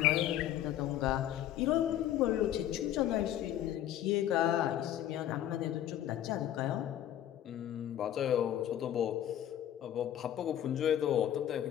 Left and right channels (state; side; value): quieter; right; 11.6 dB